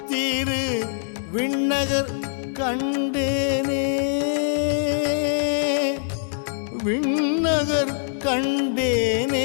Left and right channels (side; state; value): right; silent; digital silence